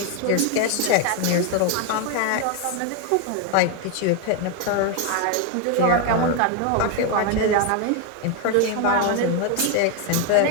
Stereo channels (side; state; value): both; different; correlation 0.01